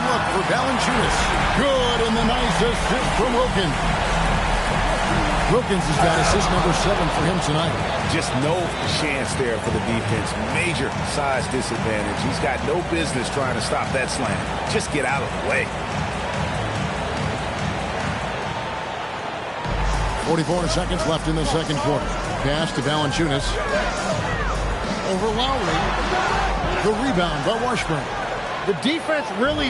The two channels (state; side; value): identical; both; correlation 1.00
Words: for Valanciunas. Good, and the nice assist from Wilkins. Wilkins has got assist number 7 for him tonight. Just no chance there for the defense. Major size disadvantage. He's got no business trying to stop that slam. Just get out of the way. 44 seconds left in the second quarter. Pass to Valanciunas. Over Lowry. The rebound by Washburn. The defense